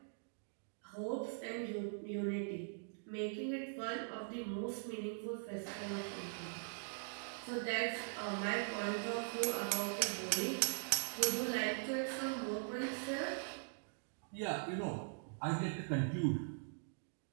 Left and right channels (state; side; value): silent; left; digital silence